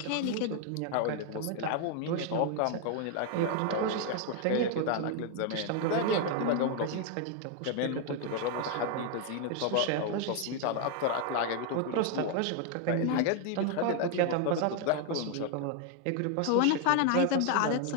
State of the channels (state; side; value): different; both; correlation 0.00